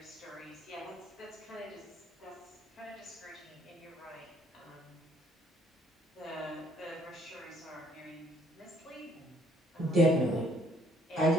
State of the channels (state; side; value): normal; both; correlation 0.64